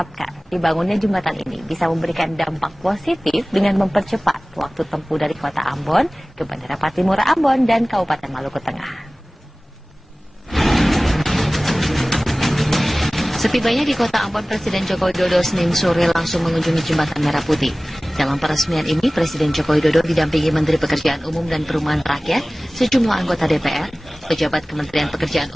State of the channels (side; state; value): both; normal; correlation 0.98